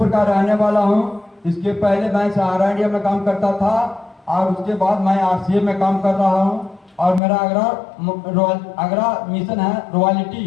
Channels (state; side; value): drops out; right; at 7.2 s